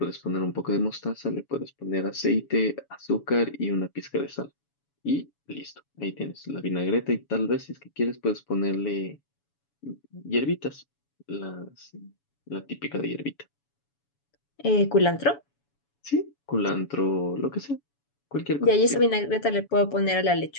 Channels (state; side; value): late; right; 7.1 ms